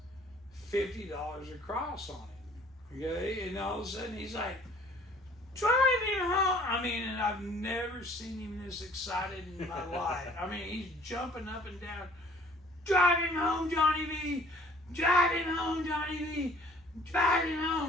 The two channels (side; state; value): both; normal; correlation 0.54